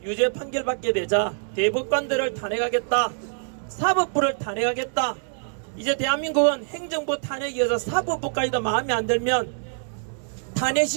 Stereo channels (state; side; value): silent; left; digital silence